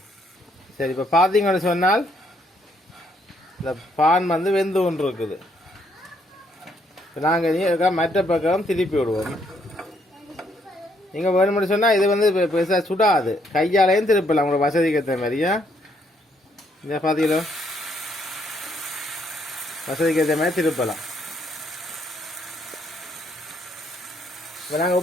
சரி, இப்போ பார்த்தீங்கன்னு சொன்னால் இந்த பான் வந்து வெந்து ஒன்று இருக்குது. இப்போ நாங்கள் மற்ற பக்கம் திருப்பி விடுவோம். நீங்கள் வேணும்னு சொன்னால் இது வந்து பெருசாக சுடாது, கையாலையும் திருப்பலாம் உங்களோட வசதிக்கு ஏற்ற மாதிரியா. இந்த பார்த்தீங்களோ, வசதிக்கு ஏற்ற மாதிரி திருப்பலாம். இப்போ நாங்கள்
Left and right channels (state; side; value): normal; both; correlation 0.71